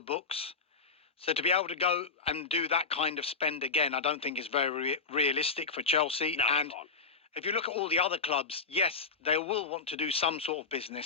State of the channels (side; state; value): right; quieter; 4.6 dB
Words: books. So to be able to go and do that kind of spend again, I don't think is very realistic for Chelsea. No, and come on. if you look at all the other clubs, yes, they will want to do some sort of